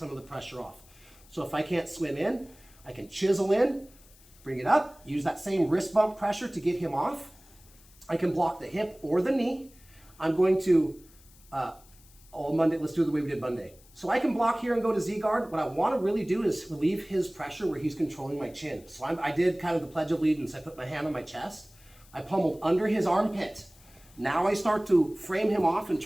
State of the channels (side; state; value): left; noise; hiss, 26 dB below the sound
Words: of the pressure off. So if I can't swim in, I can chisel in, bring it up, use that same wrist bump pressure to get him off. I can block the hip or the knee. I'm going to, Monday, let's do it the way we did Monday. So I can block here and go to Z-guard. What I wanna really do is relieve his pressure where he's controlling my chin. So I did kind of the Pledge of Allegiance. I put my hand on my chest. I pummeled under his armpit. Now I start to frame him off and